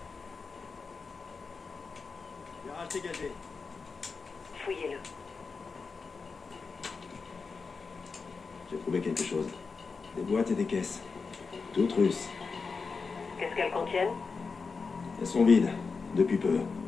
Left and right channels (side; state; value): right; quieter; 4.8 dB